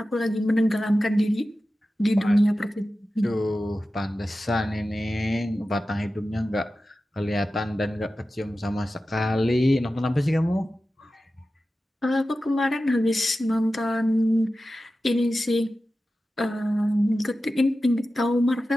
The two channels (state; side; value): normal; both; correlation 0.94